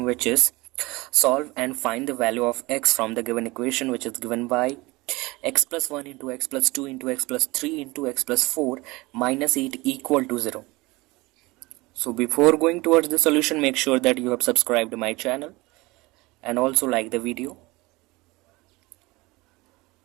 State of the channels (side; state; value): left; quieter; 22.4 dB